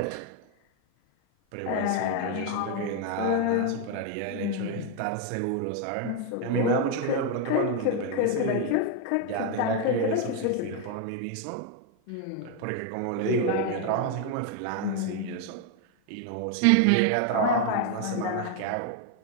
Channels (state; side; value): different; both; correlation 0.01